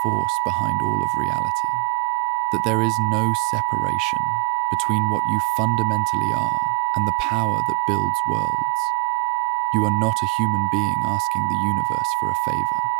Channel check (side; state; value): left; quieter; 27.2 dB